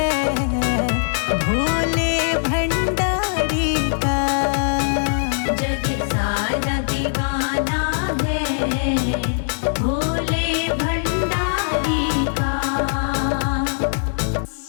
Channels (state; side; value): silent; right; digital silence